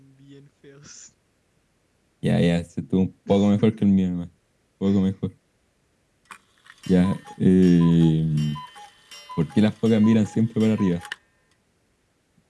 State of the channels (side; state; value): both; identical; correlation 1.00